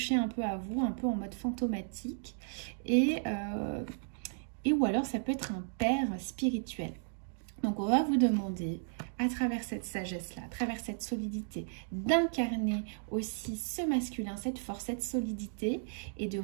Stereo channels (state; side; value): silent; left; digital silence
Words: un peu à vous, un peu en mode fantomatique, et ou alors ça peut être un père spirituel. Donc on va vous demander, à travers cette sagesse-là, à travers cette solidité, d'incarner aussi ce masculin, cette force, cette solidité, et de